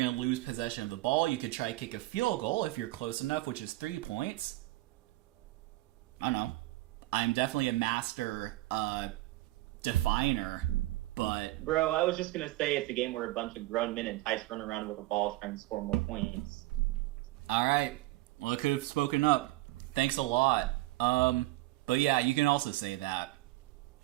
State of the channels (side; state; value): left; quieter; 18.7 dB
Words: to lose possession of the ball, you could try to kick a field goal if you're close enough, which is 3 points. I don't know. I'm definitely a master definer, but... Bro, I was just going to say it's a game where a bunch of grown men entice run around with a ball trying to score more points. All right. Well, I could have spoken up. Thanks a lot. But yeah, you can also say that.